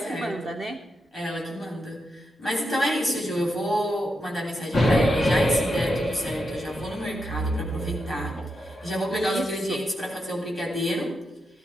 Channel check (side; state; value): both; normal; correlation 0.85